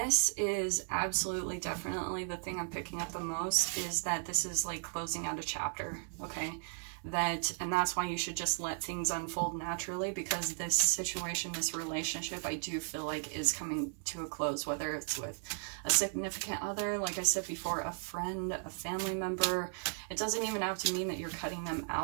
is absolutely, definitely the thing I'm picking up the most, is that this is like closing out a chapter, okay? And that's why you should just let things unfold naturally, because this situation, this relationship, I do feel like is coming to a close, whether it's with a significant other, like I said before, a friend, a family member. It doesn't even have to mean that you're cutting them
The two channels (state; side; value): silent; left; 54 dB below the other